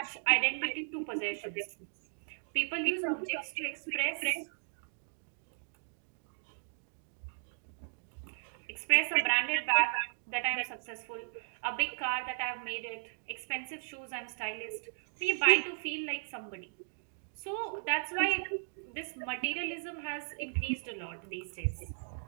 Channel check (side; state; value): left; silent; digital silence